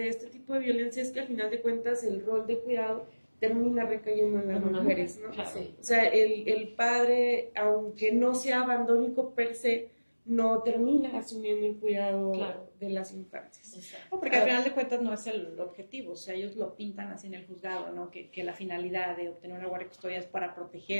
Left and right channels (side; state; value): both; inverted; correlation -1.00